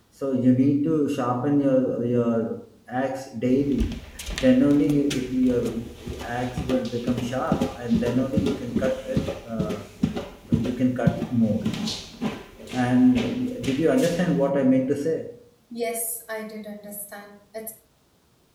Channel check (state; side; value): identical; both; correlation 1.00